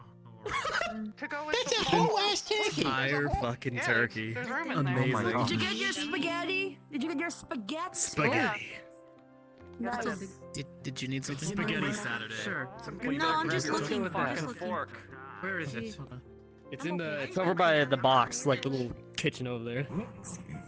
To go with That's a the whole ass turkey. Entire fucking Yeah, turkey. There's room in there. Amazing. Did you get your spaghetti? Did you get your spaghetti? Spaghetti. Nice. Did you need something? Spaghetti Saturday. Sure. No, I'm just looking. fucking Just looking. fork. Where is it? It's in the. It's over by the box, like the little kitchen over there.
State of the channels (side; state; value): both; identical; correlation 1.00